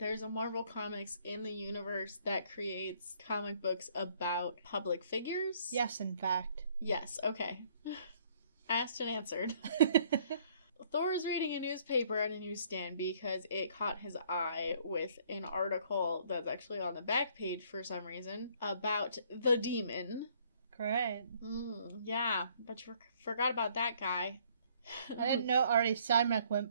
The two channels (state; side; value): inverted; both; correlation -0.62